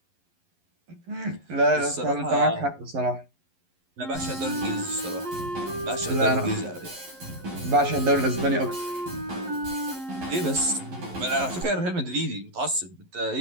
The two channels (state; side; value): late; left; 11 ms